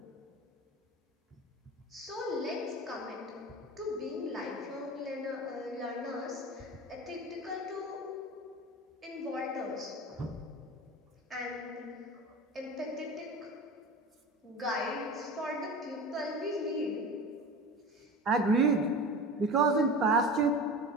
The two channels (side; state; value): both; normal; correlation 0.32